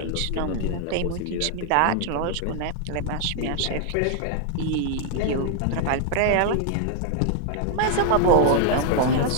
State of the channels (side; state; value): both; different; correlation 0.00